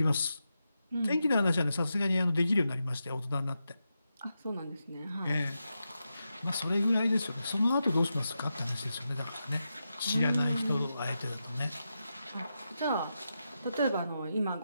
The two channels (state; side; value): inverted; both; correlation -0.88